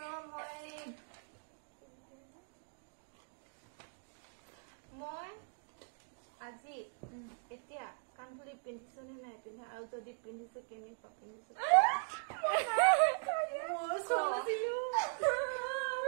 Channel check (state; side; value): silent; left; digital silence